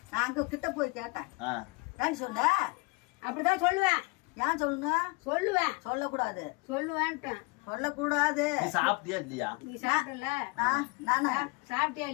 நான் அங்க கிட்ட போய் கேட்டேன். ஏன்னு சொன்ன? அப்படிதான் சொல்லுவேன். ஏன் சொல்லணும்? சொல்லுவேன். சொல்லக்கூடாது. சொல்லுவேன்ட்டேன். சொல்லக்கூடாது. நீ சாப்பிட்டியா இல்லையா? நீ சாப்பிடல? நானா சாப்பிட்டியா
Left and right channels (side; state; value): right; quieter; 27.4 dB